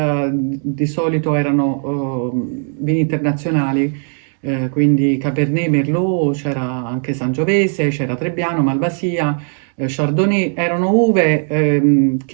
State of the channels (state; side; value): silent; left; 55 dB below the other